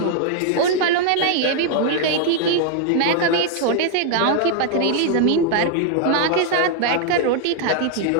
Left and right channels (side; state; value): both; different; correlation 0.00